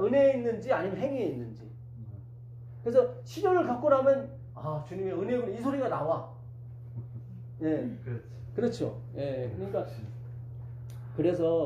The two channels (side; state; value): both; identical; correlation 1.00